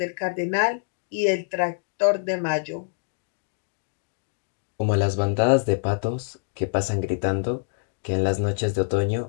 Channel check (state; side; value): silent; right; digital silence